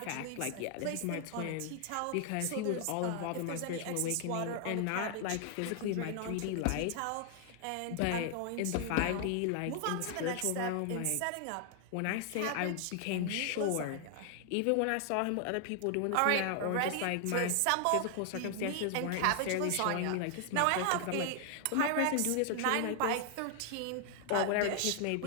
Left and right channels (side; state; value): both; different; correlation 0.00